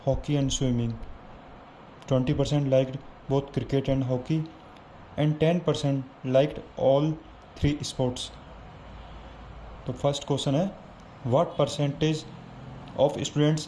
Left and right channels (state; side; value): identical; both; correlation 1.00